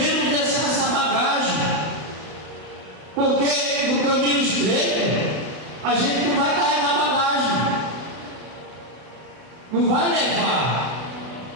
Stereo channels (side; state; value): left; late; 32 ms